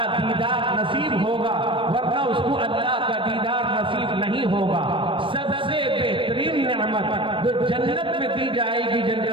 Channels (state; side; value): late; left; 0.25 ms